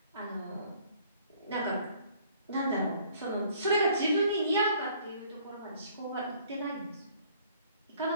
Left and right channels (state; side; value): inverted; both; correlation -0.59